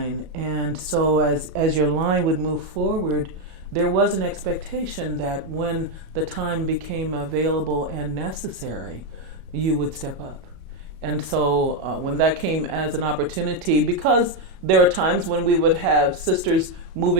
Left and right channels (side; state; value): left; late; 33 ms